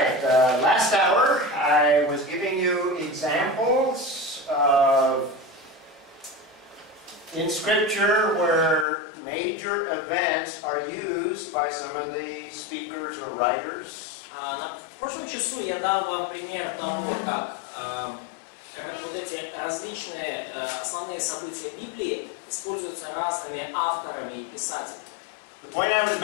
right, last hour I was giving you examples of in Scripture where major events are used by some of the speakers or writers. В прошлом часу я дал вам пример того, как вот эти различные основные события Библии используются разными авторами и писателями. The point I was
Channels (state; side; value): drops out; right; at 8.8 s